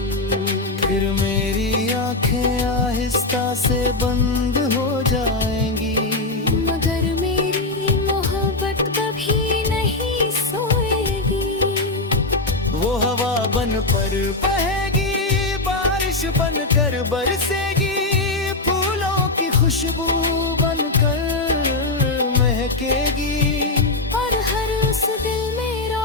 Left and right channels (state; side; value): quieter; right; 3.1 dB